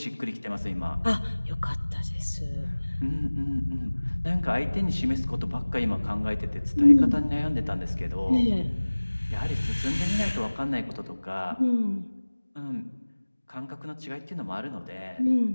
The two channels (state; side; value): inverted; both; correlation -1.00